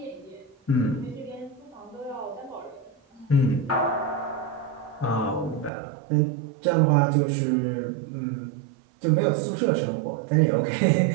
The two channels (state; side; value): drops out; left; at 5.7 s